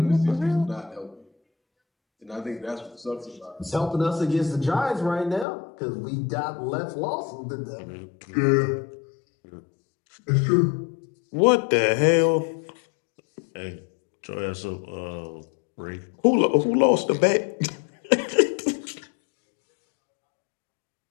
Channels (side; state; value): right; drops out; at 5.5 s